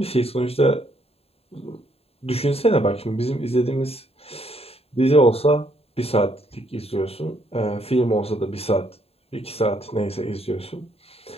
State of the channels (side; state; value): right; late; 0.29 ms